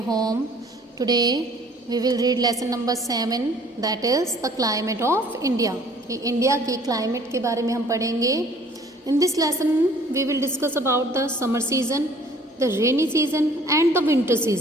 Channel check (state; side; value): normal; both; correlation 0.54